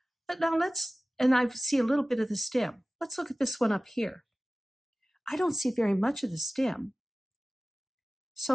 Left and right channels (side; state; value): both; normal; correlation 0.97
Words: But now and I see a little bit of the stem. Let's look at this one up here. I don't see very much of the stem.